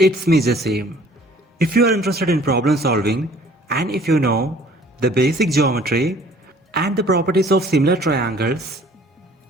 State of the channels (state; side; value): normal; both; correlation 0.54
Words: me Jasim. If you are interested in problem solving and if you know the basic geometry and the properties of similar triangles,